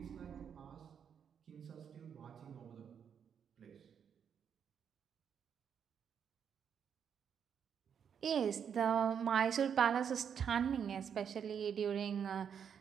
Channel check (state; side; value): quieter; left; 7.7 dB